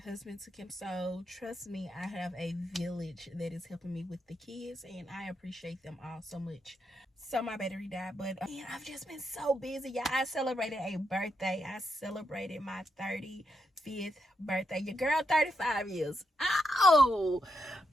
took him. So trust me, I have a village that is helping me with the kids, and I appreciate them all so much. So my battery died, but I've just been so busy, y'all. I celebrated a birthday. I celebrated my 35th birthday. Your girl 35 years. Oh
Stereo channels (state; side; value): normal; both; correlation 0.82